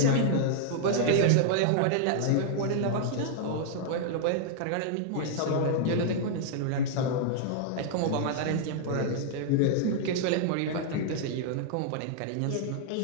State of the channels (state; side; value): different; both; correlation -0.01